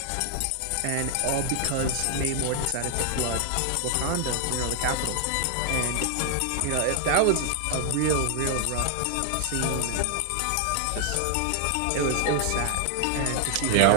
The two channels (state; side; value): different; both; correlation 0.00